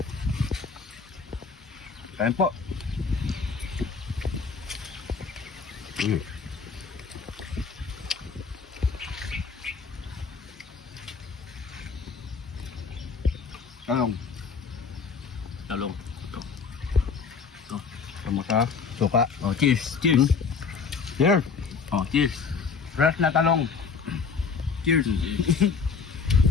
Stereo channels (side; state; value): right; quieter; 5.5 dB